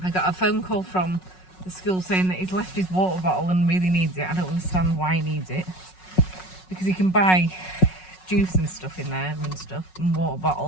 I got a phone call from the school saying that he's left his water bottle and really needs it. I don't understand why he needs it, because he can buy juice and stuff in there and stuff, and water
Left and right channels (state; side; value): late; right; 5.4 ms